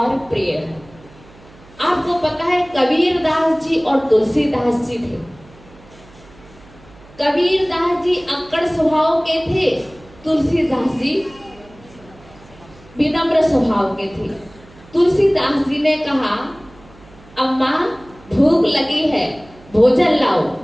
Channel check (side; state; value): right; noise; hum, 24 dB below the sound